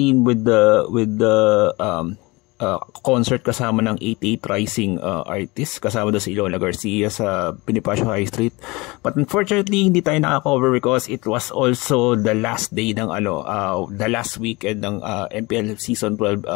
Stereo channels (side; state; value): right; quieter; 23.9 dB